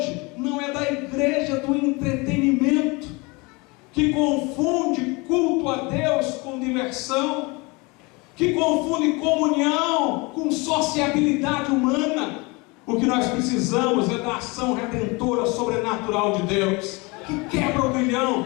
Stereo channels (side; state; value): right; quieter; 26.6 dB